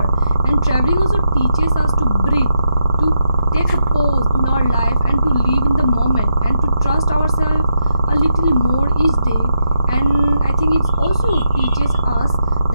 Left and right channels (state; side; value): inverted; both; correlation -0.82